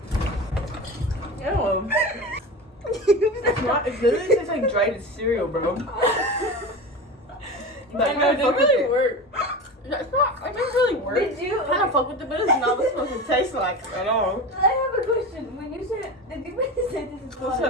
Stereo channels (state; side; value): normal; both; correlation 0.28